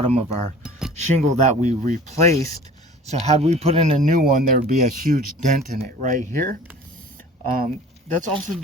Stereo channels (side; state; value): both; normal; correlation 0.45